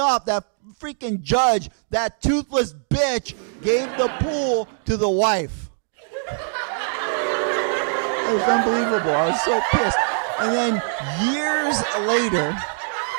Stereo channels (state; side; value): silent; left; 64 dB below the other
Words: that freaking judge, that toothless bitch, gave the pool to the wife. It was unbelievable. I was so pissed. And then years later,